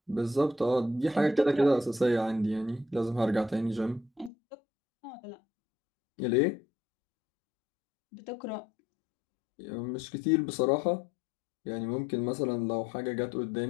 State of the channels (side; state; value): right; drops out; at 4.3 s